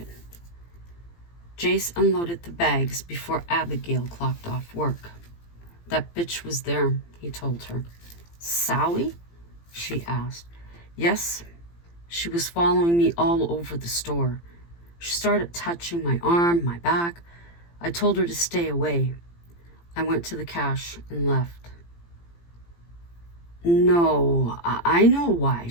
Jace unloaded the bags before Abigail clocked off work. That bitch was there, he told her. Sally? She asked. Yes. She was following me all over the store. She started touching my arm, my back. I told her to stay away. I went to the cash and left. No, I know why.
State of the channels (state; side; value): late; right; 18 ms